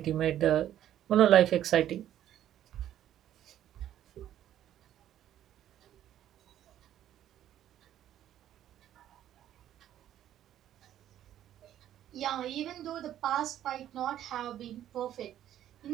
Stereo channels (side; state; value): left; quieter; 11.6 dB